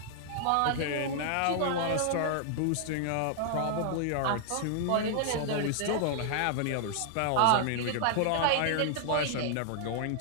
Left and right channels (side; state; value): both; different; correlation 0.00